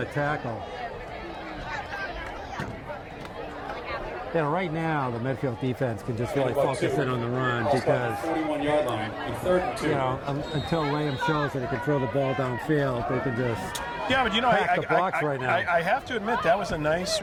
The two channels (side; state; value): both; identical; correlation 1.00